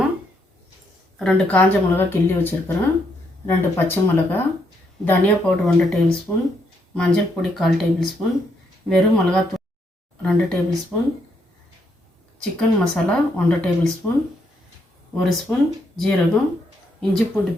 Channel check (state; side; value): normal; both; correlation 0.75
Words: 2 காஞ்ச மிளகா கிள்ளி வச்சுருக்கிறேன், 2 பச்சை மிளகா, தனியா பவுடர் 1 டேபிள் ஸ்பூன், மஞ்சள் பொடி 1/4 டேபிள் ஸ்பூன், வெறும் மிளகாத்தூள் 2 table spoon, chicken masala 1 table spoon, 1 spoon ஜீரகம், இஞ்சி பூண்டு